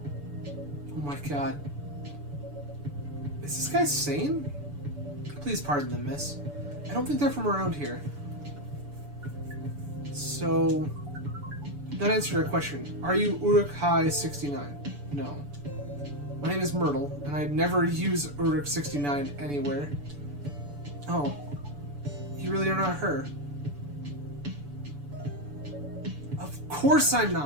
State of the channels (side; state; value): left; late; 6.9 ms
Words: Oh my god. Is this guy sane? Please pardon them, miss. I don't think they're from around here. So, not answer your question. Are you Uruk-hai-69? No. My name is Myrtle, and I'd never use Uruk-69 anywhere. Oh. You really are not her. Of course I'm